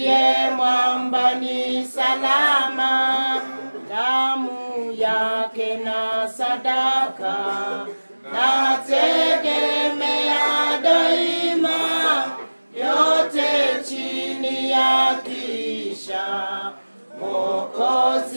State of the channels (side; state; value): both; inverted; correlation -1.00